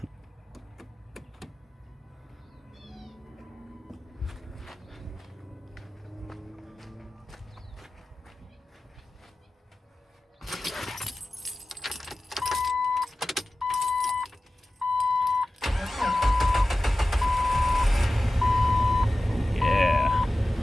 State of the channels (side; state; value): both; normal; correlation 0.95